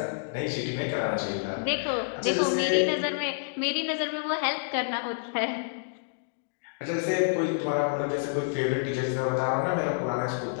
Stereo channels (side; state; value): right; silent; digital silence